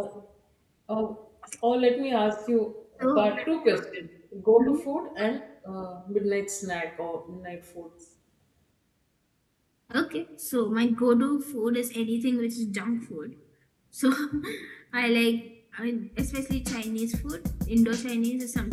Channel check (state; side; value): identical; both; correlation 1.00